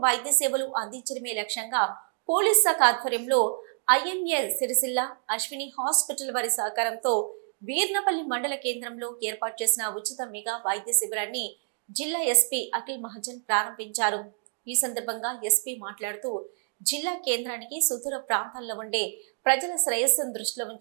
వైద్య సేవలు అందించడమే లక్ష్యంగా పోలీస్ శాఖ ఆధ్వర్యంలో ఐఎంఏ సిరిసిల్ల అశ్విని హాస్పిటల్ వారి సహకారంతో వీర్నపల్లి మండల కేంద్రంలో ఏర్పాటు చేసిన ఉచిత మెగా వైద్య శిబిరాన్ని జిల్లా ఎస్పీ అఖిల్ మహాజన్ ప్రారంభించారు. ఈ సందర్భంగా ఎస్పీ మాట్లాడుతూ జిల్లా కేంద్రానికి సుదూర ప్రాంతాల్లో ఉండే ప్రజల శ్రేయస్సును దృష్టిలో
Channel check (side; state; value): left; silent; digital silence